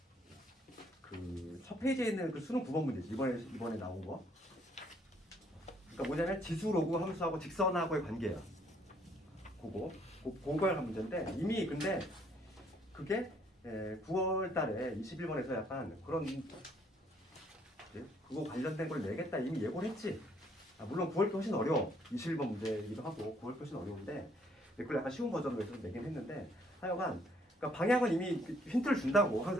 첫 페이지에 있는 수능 9번 문제지 이번에 나온 거. 그러니까 뭐냐면 지수 로그 함수하고 직선하고의 관계야. 그걸 한 문제인데 이미 근데 그게 9월 달에 21번에서 약간 그런 그거 관련된 걸 내겠다 이미 예고를 했지. 물론 9월 게 훨씬 어려워. 21번 문제이기도 하고 9월 게 훨씬 어려운데 그걸 약간 쉬운 버전으로 해서 내긴 했는데 하여간 그러니까 방향은 이미 힌트를 준다고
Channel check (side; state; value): both; normal; correlation 0.66